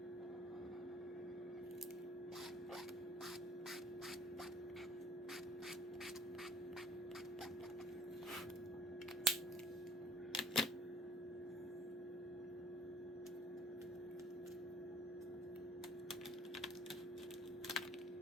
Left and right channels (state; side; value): normal; both; correlation 0.53